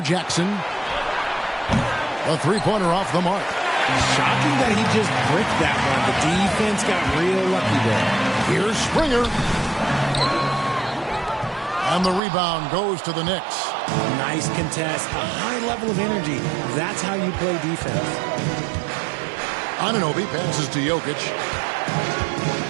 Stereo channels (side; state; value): left; drops out; at 12.2 s